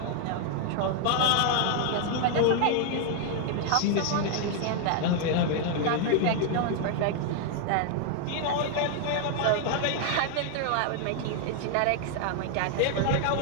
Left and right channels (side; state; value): both; different; correlation 0.00